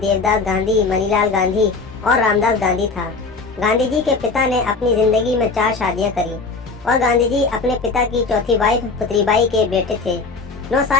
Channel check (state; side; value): quieter; right; 4.2 dB